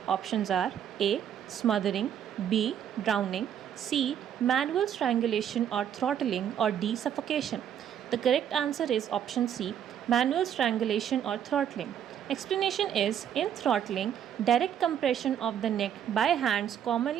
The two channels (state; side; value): quieter; left; 9.4 dB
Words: options are A, smothering, B, drowning, C, manual strangulation or throttling, or D, suffocation. The correct answer is option C, manual strangulation or throttling. Explanation is, in throttling, direct compression of the neck by hands